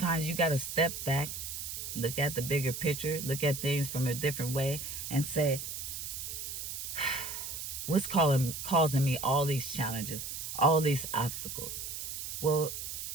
you got to step back, look at the bigger picture, look at things from a different way, and say, what's causing me all these challenges, all these obstacles? Well,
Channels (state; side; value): noise; right; hiss, 6 dB below the sound